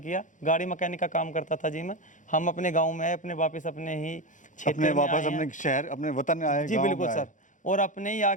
किया। गाड़ी मैकेनिक का काम करता था जी मैं। हम अपने गाँव में आए, अपने वापस अपने ही क्षेत्र में वापस अपने शहर अपने वतन आए जी बिल्कुल सर, और अपने ही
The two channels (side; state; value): right; late; 0.37 ms